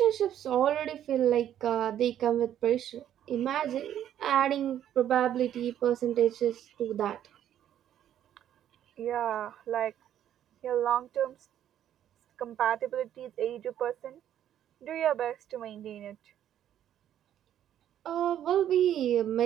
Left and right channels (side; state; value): left; quieter; 10.8 dB